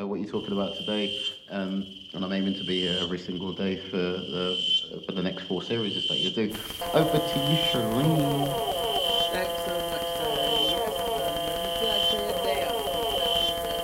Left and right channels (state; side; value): identical; both; correlation 1.00